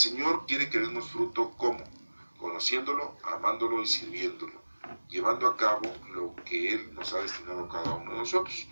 quiere que demos fruto, ¿cómo? Conociéndolo, amándolo y sirviéndolo, llevando a cabo lo que Él nos ha destinado a cada uno de nosotros.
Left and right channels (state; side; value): inverted; both; correlation -1.00